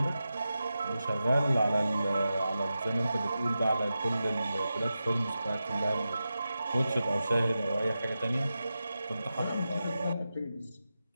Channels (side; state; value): both; inverted; correlation -0.91